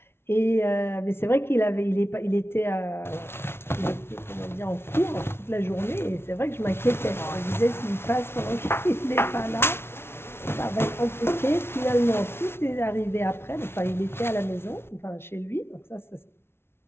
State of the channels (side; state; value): right; late; 0.12 ms